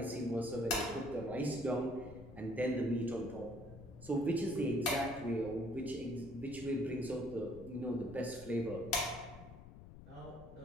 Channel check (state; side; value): noise; left; rumble, 16 dB below the sound